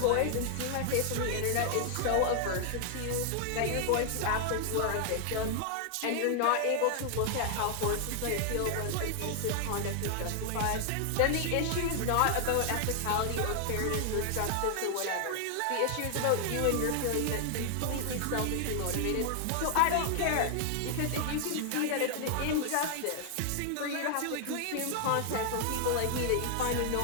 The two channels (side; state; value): both; different; correlation 0.00